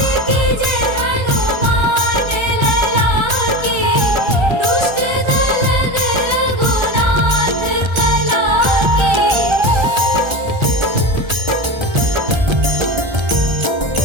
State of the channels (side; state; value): left; late; 1.3 ms